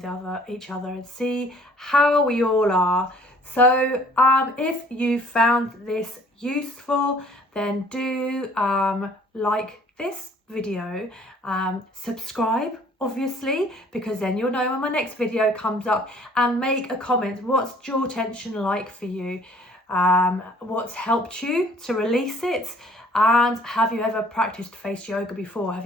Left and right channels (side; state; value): both; normal; correlation 0.56